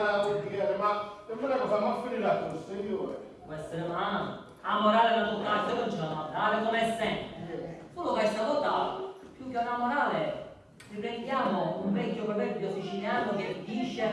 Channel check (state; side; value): identical; both; correlation 1.00